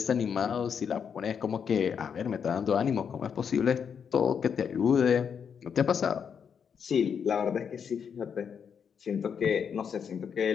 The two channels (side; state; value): right; quieter; 7.2 dB